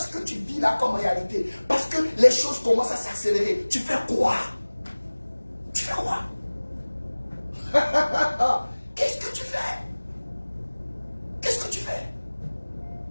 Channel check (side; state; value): both; inverted; correlation -1.00